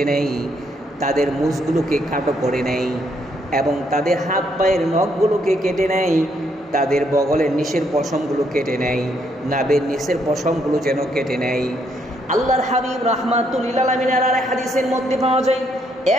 নেয়, তাদের মুছগুলোকে খাটো করে নেয় এবং তাদের হাত পায়ের নখগুলোকে কেটে নেয়, তাদের বগলের নিচের পশমগুলো কেটে নেয়, নাভের নিচের পশমগুলো যেন কেটে নেয়। আল্লাহর হাবিব রাহমাতুল্লিল আলামিনের আর হাদিসের মধ্যে পাওয়া যায়,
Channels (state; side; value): normal; both; correlation 0.73